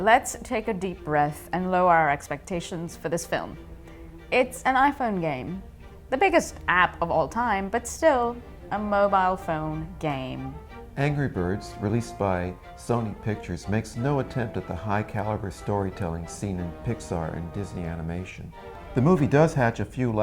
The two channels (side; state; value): both; identical; correlation 1.00